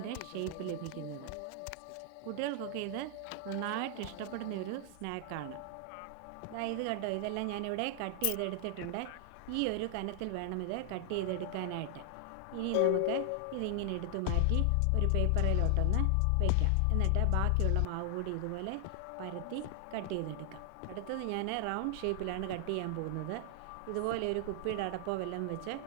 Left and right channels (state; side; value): different; both; correlation 0.00